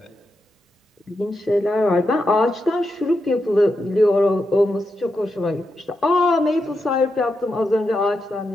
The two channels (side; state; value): both; normal; correlation 0.85